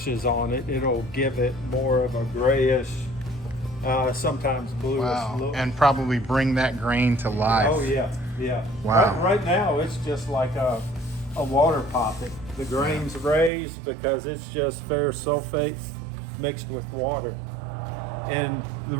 is on it, it'll give it more of a grayish, sometimes bluish look. And probably bring that grain to life. Oh yeah, yeah. Wow. Right now it's just like a water poppet. The grain's raised because it's just ferrous sulfate mixed with water. And the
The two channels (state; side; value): drops out; left; at 13.5 s